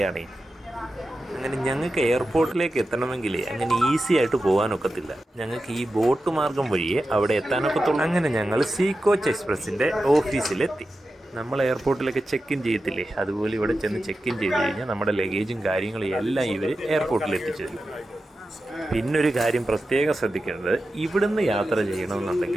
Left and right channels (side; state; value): both; normal; correlation 0.92